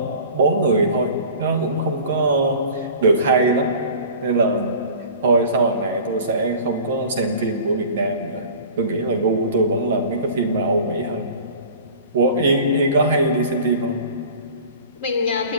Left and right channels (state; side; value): inverted; both; correlation -0.42